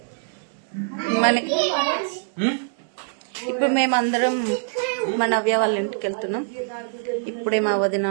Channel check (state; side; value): silent; left; 63 dB below the other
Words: మనకి ఇప్పుడు మేమందరం మా నవ్య వాళ్ళ ఇంటికి వెళ్తున్నాం. ఇప్పుడే మా వదిన